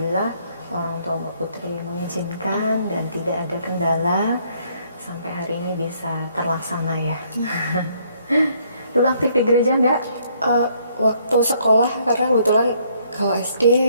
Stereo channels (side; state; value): both; inverted; correlation -0.67